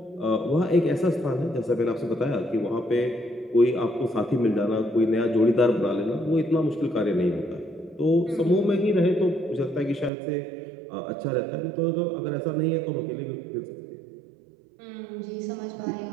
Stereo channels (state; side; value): drops out; left; at 10.1 s